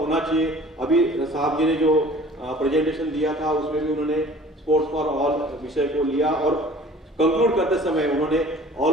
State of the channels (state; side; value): normal; both; correlation 0.48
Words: चाहिए। अभी साहब जी ने जो प्रेजेंटेशन दिया था उसमें भी उन्होंने स्पोर्ट्स फॉर ऑल विषय को लिया और कंक्लूड करते समय उन्होंने